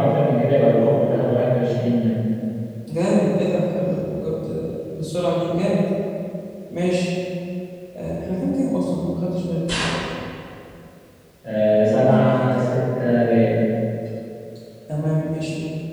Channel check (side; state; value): both; identical; correlation 1.00